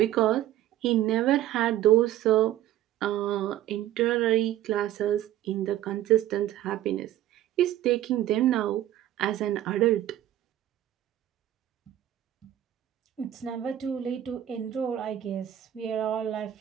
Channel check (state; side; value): quieter; left; 12.7 dB